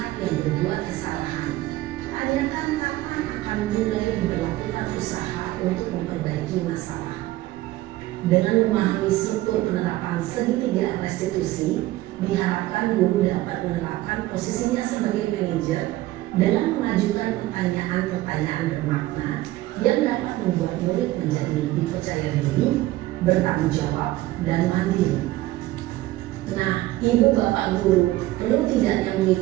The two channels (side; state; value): left; quieter; 16.9 dB